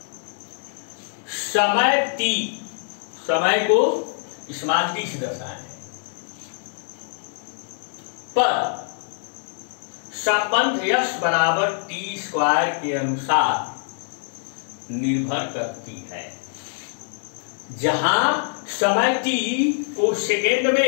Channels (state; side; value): silent; right; digital silence